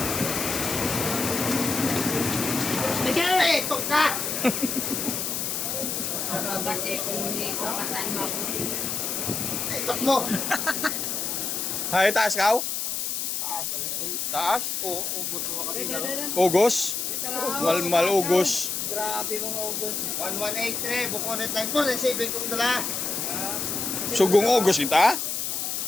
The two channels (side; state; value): left; noise; hiss, 2 dB below the sound